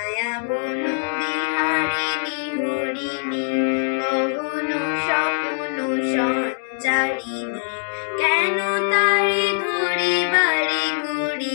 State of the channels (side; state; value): right; silent; digital silence